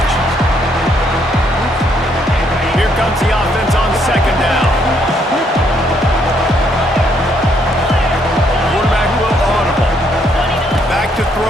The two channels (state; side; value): normal; both; correlation 0.71